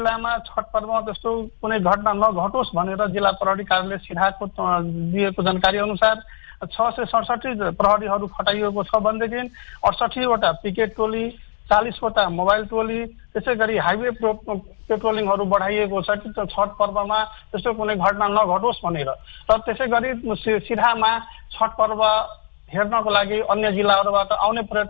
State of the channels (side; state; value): right; silent; digital silence